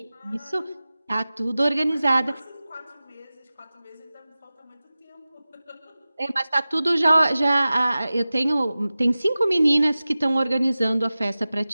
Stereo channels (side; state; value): both; inverted; correlation -0.96